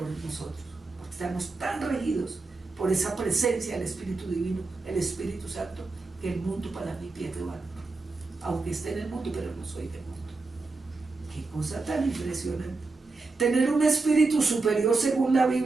en nosotros, porque estamos tan regidos por esa presencia del Espíritu Divino, el Espíritu Santo, que el mundo para mí pierde valor, aunque esté en el mundo, pero no soy del mundo. Qué cosa tan impresionante. Tener un espíritu superior, según la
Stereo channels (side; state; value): left; quieter; 3.7 dB